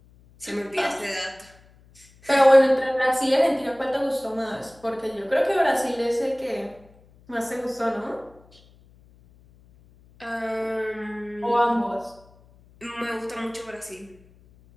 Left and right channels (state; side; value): noise; left; hum, 28 dB below the sound